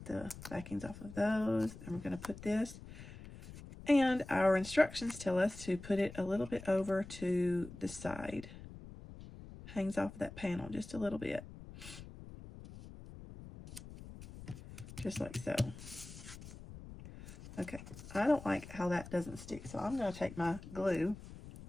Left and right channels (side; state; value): left; noise; rumble, 14 dB below the sound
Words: the backings off of those, and we're going to put this. And our instructions tell us to put it a little bit over to the side. Hangs off of that panel just a little bit. Just like so. Okay, I don't like how that doesn't stick, so I'm going to take my glue